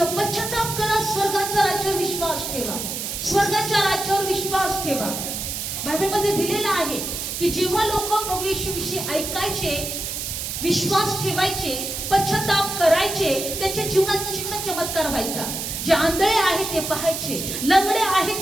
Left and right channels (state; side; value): noise; right; hiss, 4 dB below the sound